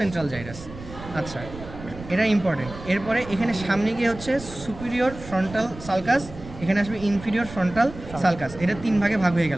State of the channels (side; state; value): right; noise; rumble, 14 dB below the sound